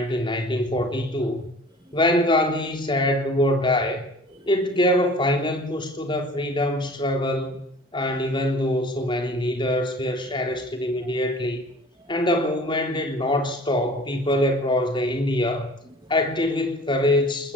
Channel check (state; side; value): normal; both; correlation 0.46